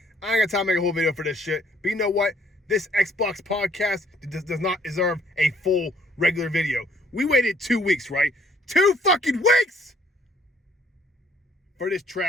I ain't got time to make a whole video for this shit. But you know what? This Xbox podcast does not deserve a full regular video. We waited 2 weeks, right? 2 fucking weeks for this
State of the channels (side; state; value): both; normal; correlation 0.63